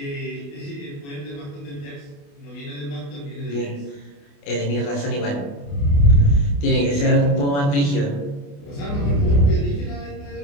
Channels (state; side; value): late; right; 28 ms